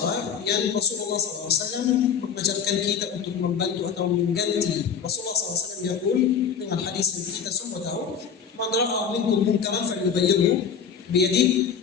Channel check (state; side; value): quieter; right; 6.9 dB